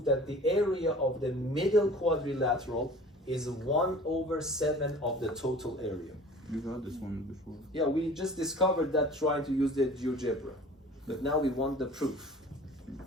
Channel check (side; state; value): both; normal; correlation 0.44